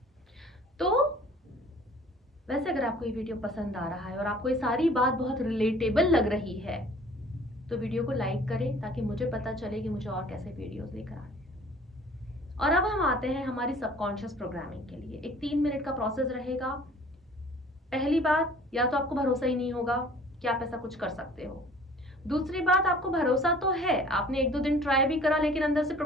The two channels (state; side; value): normal; both; correlation 0.51